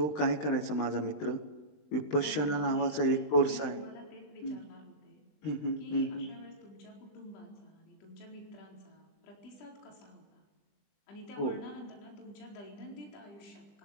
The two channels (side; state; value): right; late; 20 ms